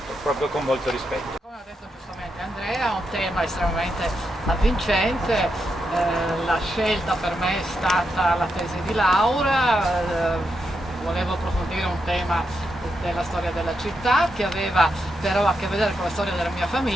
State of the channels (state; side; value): normal; both; correlation 0.83